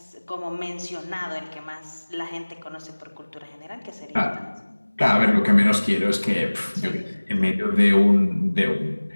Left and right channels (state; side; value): inverted; both; correlation -1.00